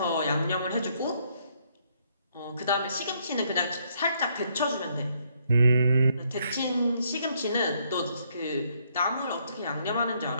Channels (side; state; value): both; inverted; correlation -0.71